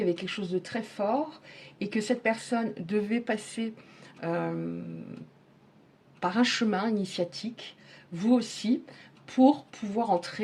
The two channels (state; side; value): identical; both; correlation 1.00